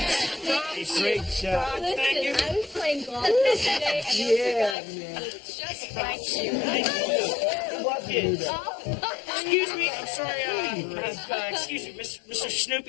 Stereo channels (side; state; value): right; drops out; at 4.8 s